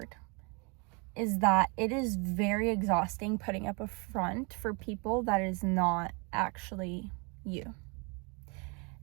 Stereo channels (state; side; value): quieter; left; 31.6 dB